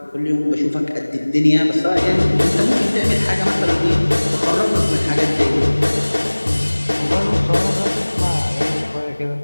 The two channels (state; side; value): inverted; both; correlation -1.00